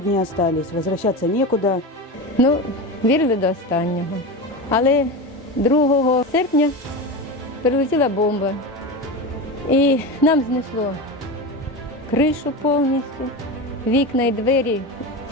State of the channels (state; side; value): normal; both; correlation 0.23